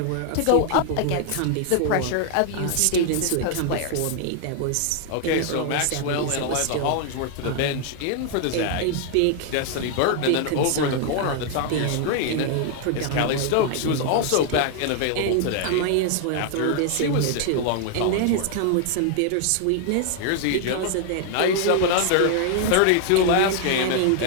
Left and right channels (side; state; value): both; different; correlation 0.00